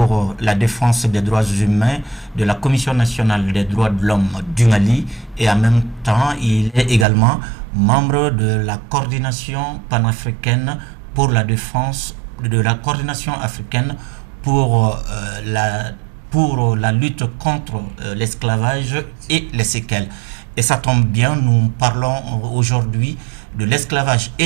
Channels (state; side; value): drops out; left; at 7.1 s